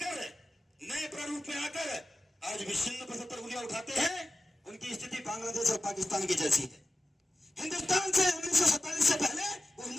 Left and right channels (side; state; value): both; normal; correlation 0.94